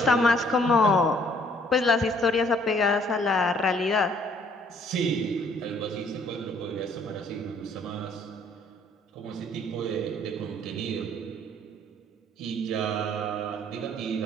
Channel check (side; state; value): both; normal; correlation 0.61